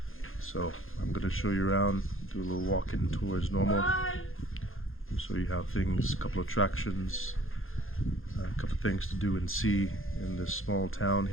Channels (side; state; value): right; late; 0.60 ms